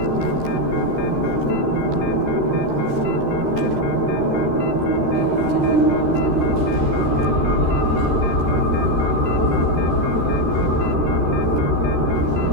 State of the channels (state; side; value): late; left; 13 ms